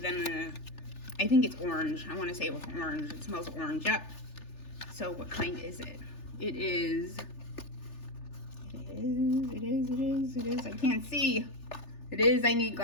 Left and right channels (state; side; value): late; right; 3.4 ms